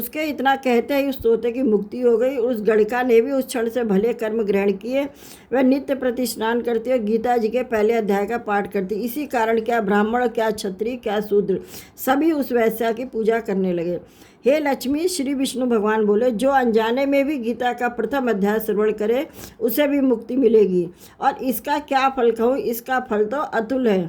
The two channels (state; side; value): identical; both; correlation 1.00